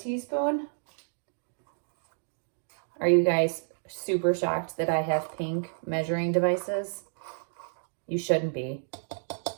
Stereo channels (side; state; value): left; silent; digital silence